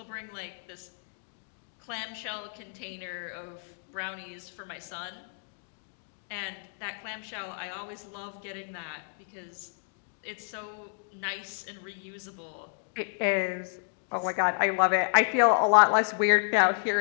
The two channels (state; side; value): silent; right; digital silence